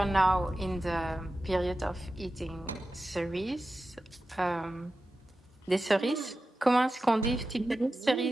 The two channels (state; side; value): normal; both; correlation 0.93